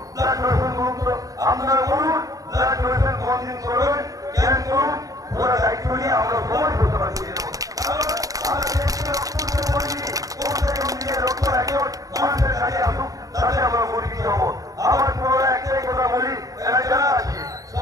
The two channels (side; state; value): left; late; 0.17 ms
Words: ব্লাড ডোনেশন করুন। তো আপনারা বলুন ব্লাড ডোনেশন কতদিন করবেন, কেন করুন, ওরা দায়িত্ব নিয়ে আমরা সবাই করতে পারছি। মানুষের কাজে আসুক, তাহলে আমরা পরিচিত হবো। আমার পুরো একটাই কথা বলি, যারা আছে